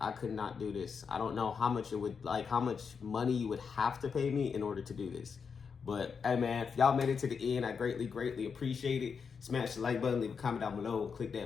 could not do this. I don't know how much it would, like how much money you would have to pay me in order to do this. But hey man, if y'all made it to the end, I greatly appreciate it. Smash the like button, leave a comment down below, and click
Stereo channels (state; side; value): quieter; right; 6.0 dB